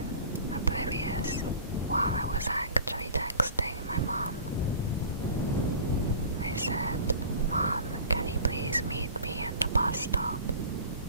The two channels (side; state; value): both; inverted; correlation -0.42